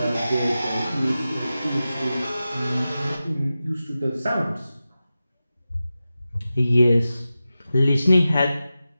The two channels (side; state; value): both; inverted; correlation -0.94